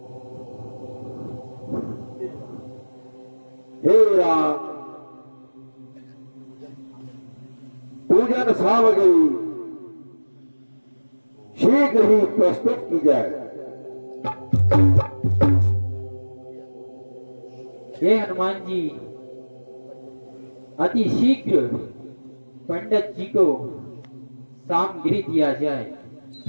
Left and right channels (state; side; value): inverted; both; correlation -1.00